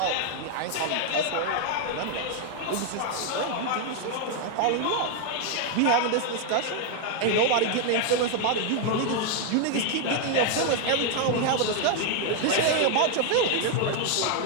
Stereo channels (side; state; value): both; different; correlation 0.00